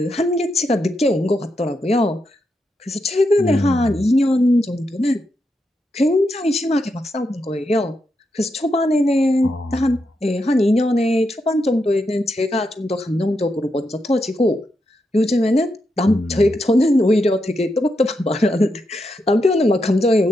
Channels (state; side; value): normal; both; correlation 0.84